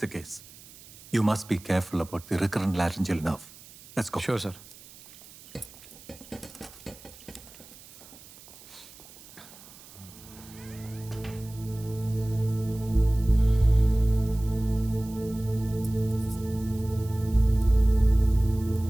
the case. You must be careful about the recurrent laryngeal nerve. Let's go. Sure sir.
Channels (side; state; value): right; noise; hiss, 20 dB below the sound